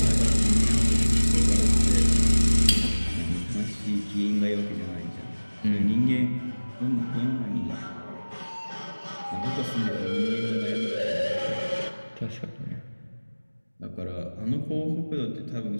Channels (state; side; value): inverted; both; correlation -1.00